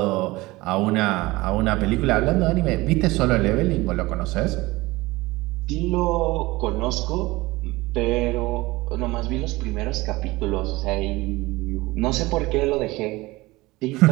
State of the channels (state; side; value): quieter; left; 20.6 dB